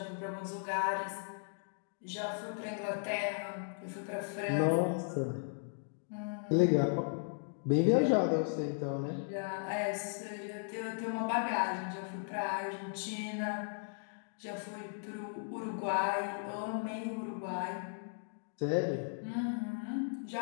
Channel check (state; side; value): silent; right; digital silence